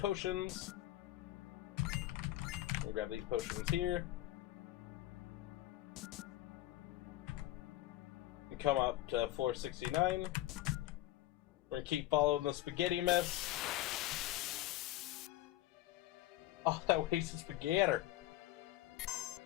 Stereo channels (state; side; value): quieter; right; 15.6 dB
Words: We'll grab these potions here. Come up to floor 69. We're gonna keep following the spaghetti mess. Oh, that wasted spaghetti.